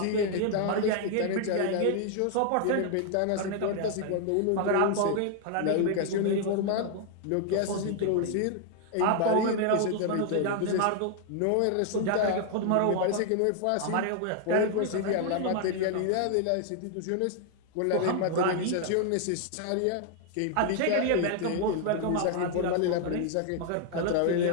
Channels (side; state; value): both; different; correlation 0.00